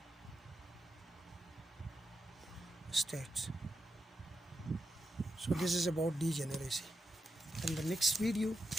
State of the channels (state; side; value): normal; both; correlation 0.87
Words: So this is about degeneracy. In the next video